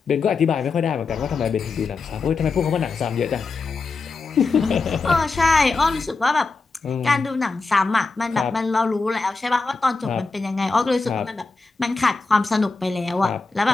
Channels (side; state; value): right; quieter; 4.1 dB